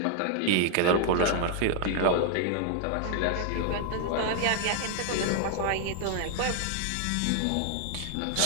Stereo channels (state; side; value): different; both; correlation 0.00